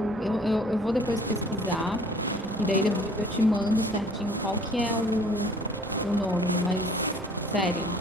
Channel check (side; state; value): both; normal; correlation 0.55